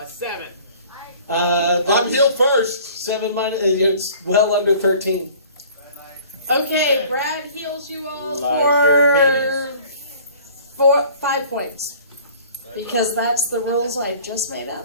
7. I'm healed first. 7 minus. It's well under 13. Okay, Brad heals you all Like for 5 points. Because that's the rules I just made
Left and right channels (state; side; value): inverted; both; correlation -0.50